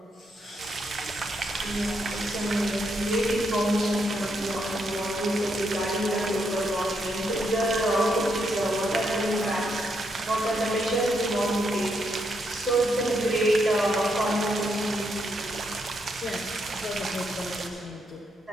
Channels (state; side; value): normal; both; correlation 0.78